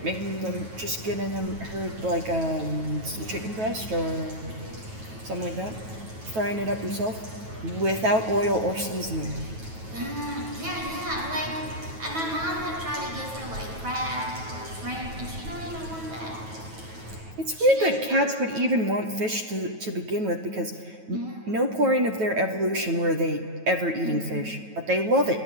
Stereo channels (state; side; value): late; left; 9.2 ms